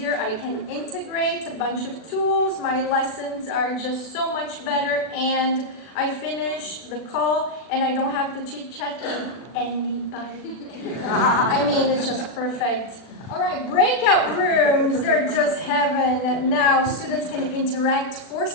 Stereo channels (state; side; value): late; right; 40 ms